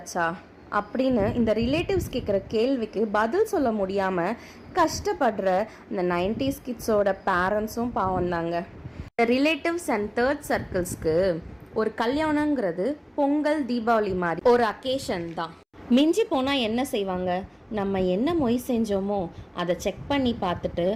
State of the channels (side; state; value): both; identical; correlation 1.00